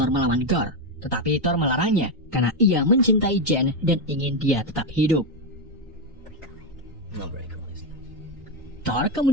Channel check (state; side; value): normal; both; correlation 0.06